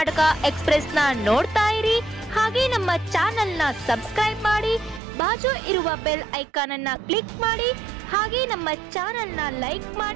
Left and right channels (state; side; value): drops out; left; at 5.0 s